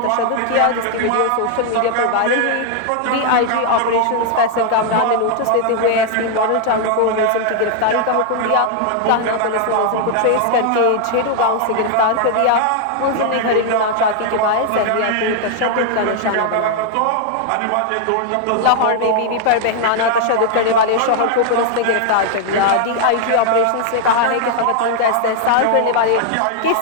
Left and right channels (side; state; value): both; different; correlation 0.00